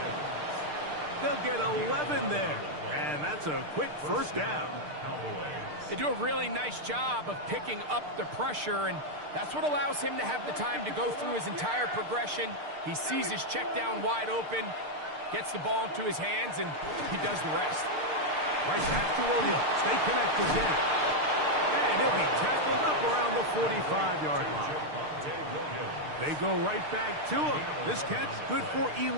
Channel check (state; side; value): late; left; 6.6 ms